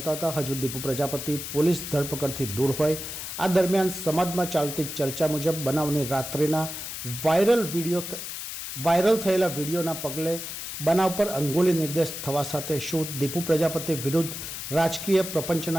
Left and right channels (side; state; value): left; noise; hiss, 7 dB below the sound